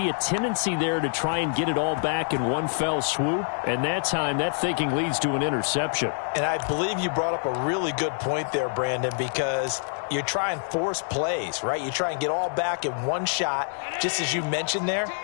a tendency there to try and get it all back in one fell swoop. And that time, that thinking leads to an interception. And I believe you brought up a really good point there, Brandon, because you try and force plays, right? You try and get all back in one shot, just as you mentioned there.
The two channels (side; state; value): right; silent; digital silence